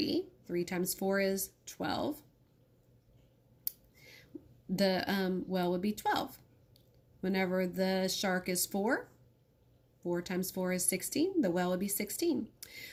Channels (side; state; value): both; identical; correlation 1.00